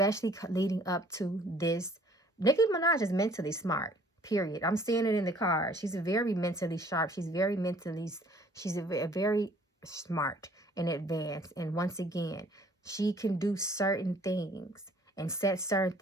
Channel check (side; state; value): both; normal; correlation 0.57